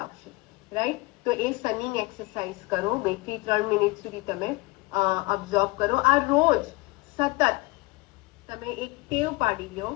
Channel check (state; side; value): quieter; right; 23.4 dB